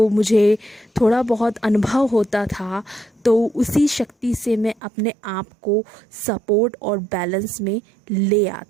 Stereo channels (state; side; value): drops out; left; at 4.8 s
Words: मुझे थोड़ा बहुत अनुभव होता था, तो उसी शक्ति से मैं अपने आप को सपोर्ट और बैलेंस में ले